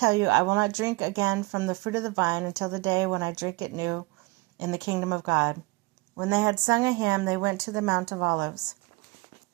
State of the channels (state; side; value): quieter; left; 23.6 dB